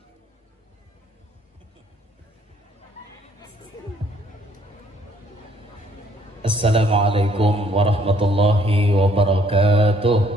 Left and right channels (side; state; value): both; normal; correlation 0.64